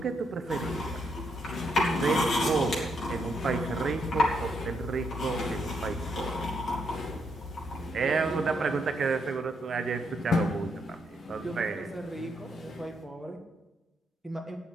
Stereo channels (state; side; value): normal; both; correlation 0.77